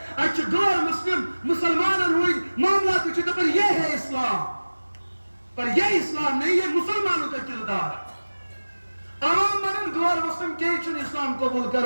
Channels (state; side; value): inverted; both; correlation -1.00